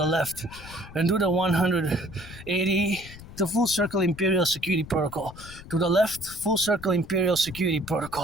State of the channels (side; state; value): left; noise; rumble, 16 dB below the sound